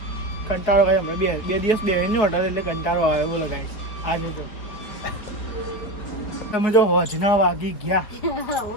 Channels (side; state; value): right; late; 4.3 ms